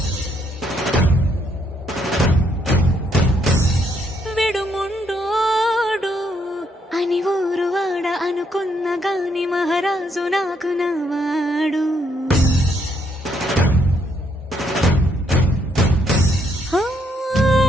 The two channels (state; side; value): normal; both; correlation 0.73